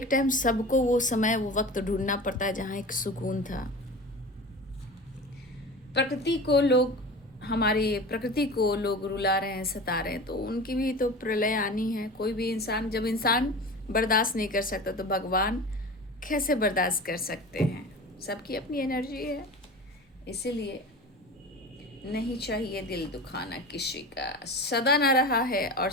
टाइम सबको वो समय, वो वक्त ढूंढना पड़ता है जहाँ एक सुकून था। प्रकृति को लोग, हमारी प्रकृति को लोग रुला रहे हैं, सता रहे हैं, तो उनकी भी तो प्रलय आनी है। कोई भी इंसान, जब इंसान बर्दाश्त नहीं कर सकता तो भगवान कैसे बर्दाश्त कर सकते हैं। सबकी अपनी एनर्जी है, इसीलिए नहीं चाहिए दिल दुखाना किसी का। सदा ना रहा है और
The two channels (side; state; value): both; normal; correlation 0.33